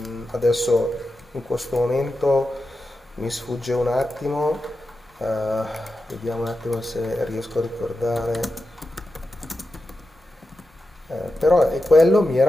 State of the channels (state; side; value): normal; both; correlation 0.90